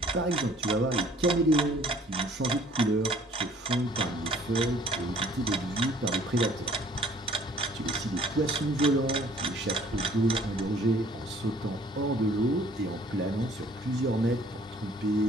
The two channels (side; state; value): both; normal; correlation 0.56